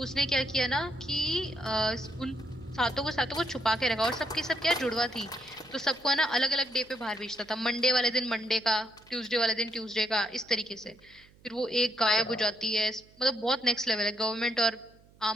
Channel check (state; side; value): noise; right; hum, 28 dB below the sound